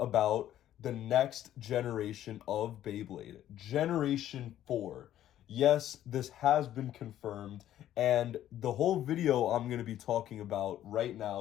about the next generation of Beyblade, Generation 4. Yes, this has been confirmed, and the whole video I'm going to be talking about right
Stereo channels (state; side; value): quieter; right; 12.1 dB